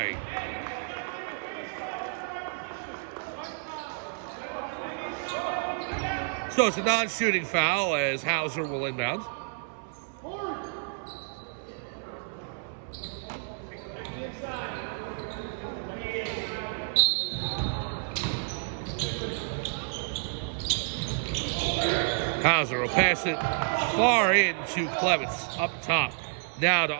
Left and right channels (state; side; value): silent; left; 58 dB below the other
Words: So it's a non-shooting foul as Hauser will inbound. Hauser will pass it far into Clements, up top. Now to